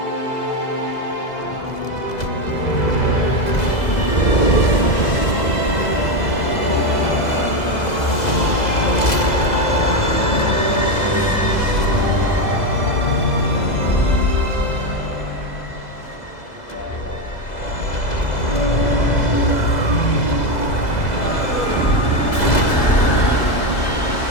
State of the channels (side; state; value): right; late; 2.0 ms